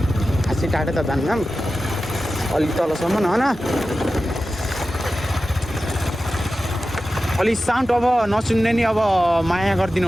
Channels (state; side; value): normal; both; correlation 0.94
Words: खासै टाढो त जान्नौँ अलिक तलसम्म होइन अलिक साउन्ड अब नसुन्ने नि अब माया गरिदिनु